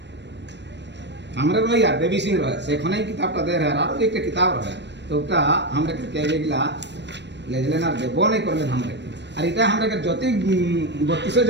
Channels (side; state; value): left; late; 0.51 ms